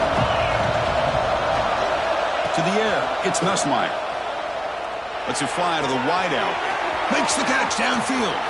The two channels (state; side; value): identical; both; correlation 1.00